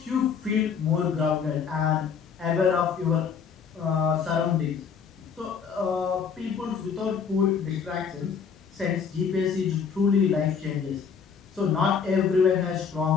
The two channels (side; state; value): right; quieter; 6.5 dB